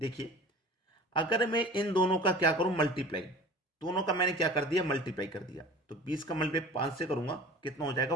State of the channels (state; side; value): normal; both; correlation 0.41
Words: अगर मैं इन दोनों का क्या करूं, मल्टीप्लाई, दोनों का मैंने क्या कर दिया, मल्टीप्लाई कर दिया, तो 20 का मल्टीप्लाई 5 से करूंगा, कितना हो